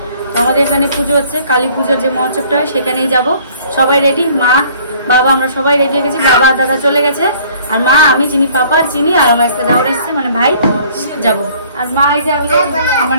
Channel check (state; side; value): inverted; both; correlation -0.55